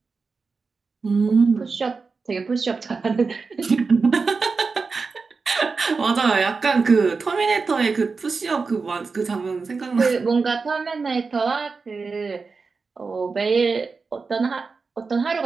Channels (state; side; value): quieter; left; 4.6 dB